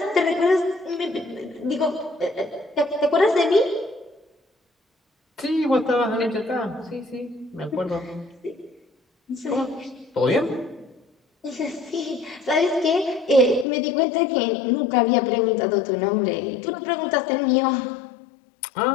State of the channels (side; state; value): right; drops out; at 13.7 s